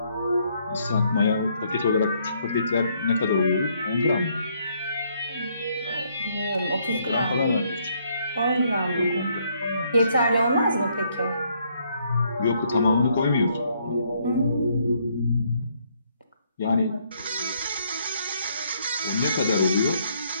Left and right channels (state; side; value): inverted; both; correlation -0.70